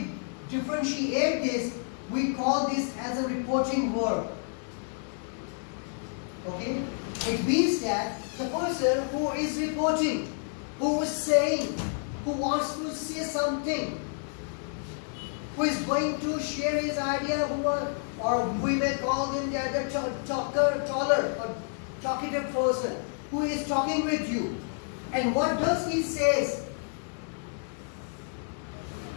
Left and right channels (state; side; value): silent; right; 58 dB below the other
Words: differentiate this, we call this as a reporting verb. Okay? It means that the person who is reporting, who is saying, who wants to say something, who is going to share his idea, or we may call him the taller or talkative person, who is talking with you. And what does he say?